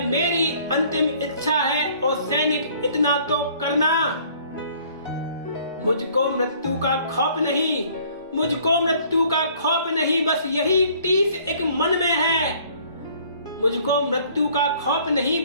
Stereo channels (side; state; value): both; inverted; correlation -0.57